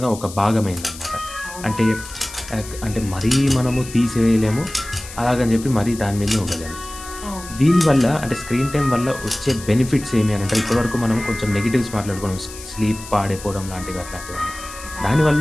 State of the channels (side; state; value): left; noise; hiss, 14 dB below the sound